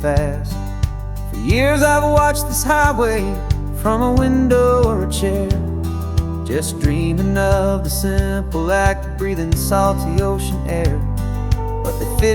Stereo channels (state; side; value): identical; both; correlation 1.00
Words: For years I've watched this highway from a window or a chair, just dreaming of the simple act of breathing salty ocean air. But they